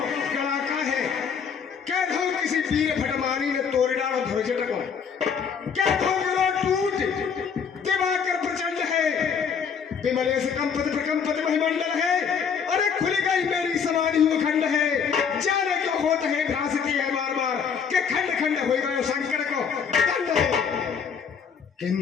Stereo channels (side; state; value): right; quieter; 6.7 dB